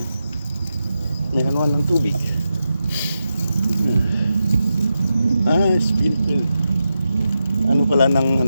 May anuan ng tubig. Sprinkle. Ano pala ng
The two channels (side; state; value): both; inverted; correlation -0.89